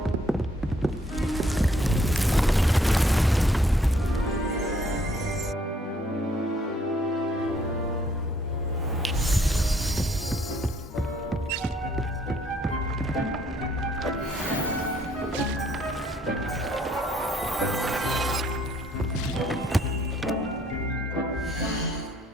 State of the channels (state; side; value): normal; both; correlation 0.65